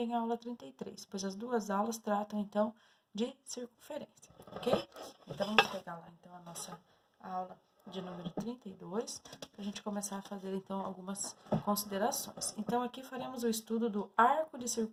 a aula 33, pois as duas aulas tratam então de circunferência, ok? Então vamos pegar lá então a nossa aula de número 32, para a gente começar a fazer então algumas considerações. Então aqui faremos o estudo do arco de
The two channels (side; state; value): both; identical; correlation 1.00